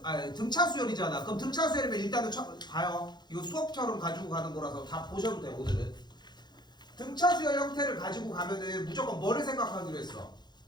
수열이잖아. 그럼 등차 수열이면 일단은 봐요. 이거 수업처럼 가지고 가는 거라서 다 보셔도 돼 오늘은. 등차 수열 형태를 가지고 가면은 무조건 뭐를 생각하기로 했어?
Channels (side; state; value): right; late; 0.21 ms